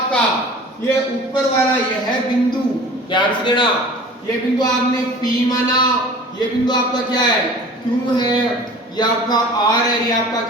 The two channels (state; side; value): normal; both; correlation 0.43